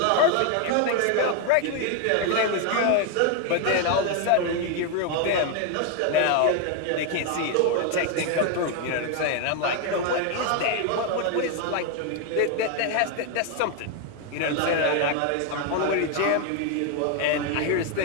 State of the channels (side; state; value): both; different; correlation 0.01